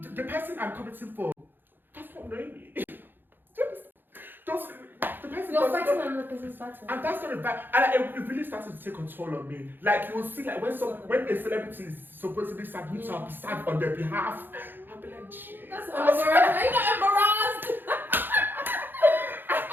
the person I'm commenting for does not know me. The person you're fighting another person's battle. And that's not a bad, and it really started to take control of me. Like, you will see, like, when a celebrity is supposedly sad, which I'll be sad on their behalf, I'll be like, gee. That's embarrassed. Are you not embarrassed?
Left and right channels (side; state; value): left; late; 0.095 ms